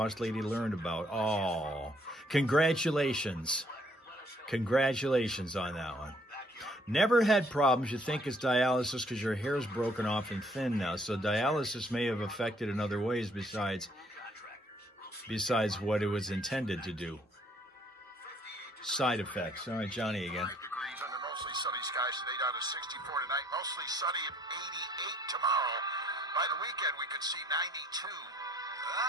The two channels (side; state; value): both; normal; correlation 0.63